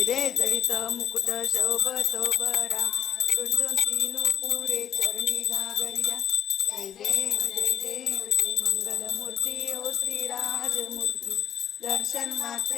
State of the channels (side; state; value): right; quieter; 9.8 dB